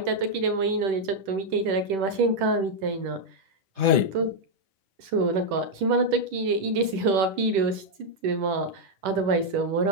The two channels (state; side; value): late; left; 10 ms